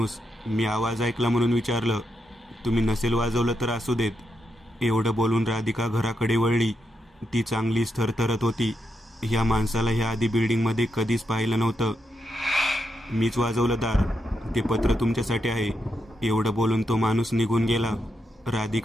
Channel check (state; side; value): normal; both; correlation 0.83